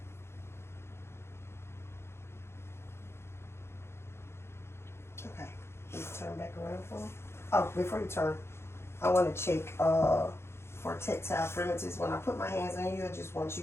Okay, let's turn back around for me. Oh, before you turn, I want to check for tactile firmness. When I put my hands on you, I just want you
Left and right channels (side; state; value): right; late; 0.12 ms